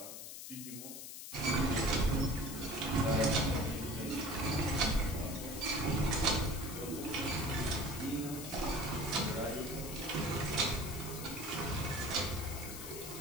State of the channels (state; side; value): noise; left; hiss, 9 dB below the sound